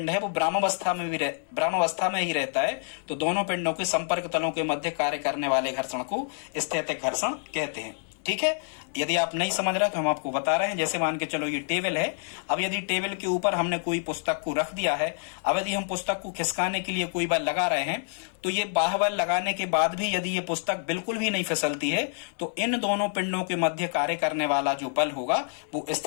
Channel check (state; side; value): silent; right; digital silence